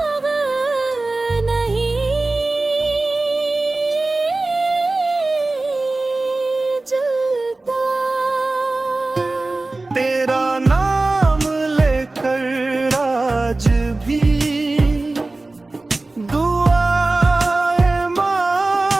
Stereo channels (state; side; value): quieter; left; 3.1 dB